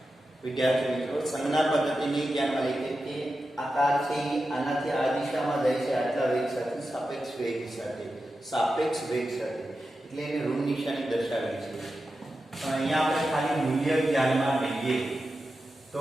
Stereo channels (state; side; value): normal; both; correlation 0.91